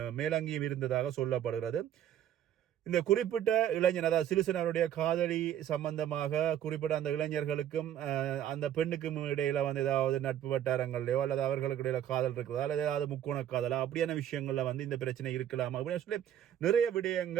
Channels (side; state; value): left; quieter; 10.7 dB